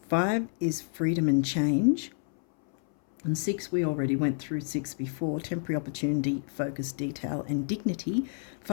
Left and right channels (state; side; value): silent; right; 58 dB below the other